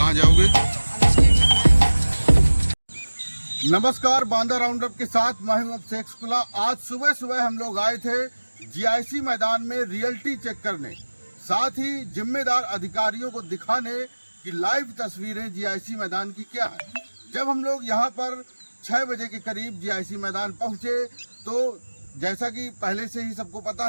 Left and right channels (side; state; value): both; inverted; correlation -1.00